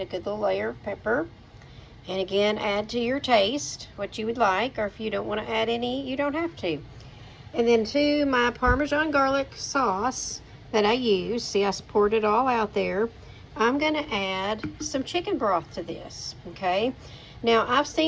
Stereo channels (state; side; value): identical; both; correlation 1.00